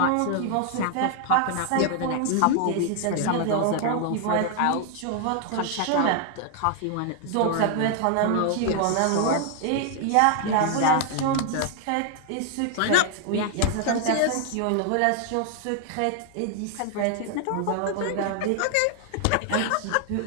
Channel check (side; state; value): both; different; correlation 0.00